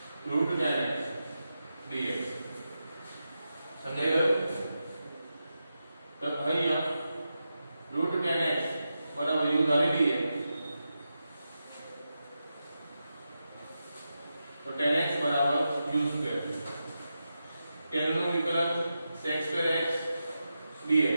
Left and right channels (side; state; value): both; inverted; correlation -0.89